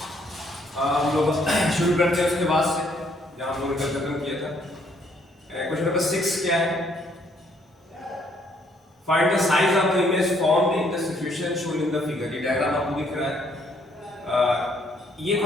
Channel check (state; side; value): normal; both; correlation 0.67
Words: हम लोग शुरू करते हैं उसके बाद से जहाँ हम लोगों ने कल खत्म किया था। क्वेश्चन नंबर 6 क्या है? Find the size of the image formed in the situation shown in the figure. ये डायग्राम आपको दिख रहा है। ये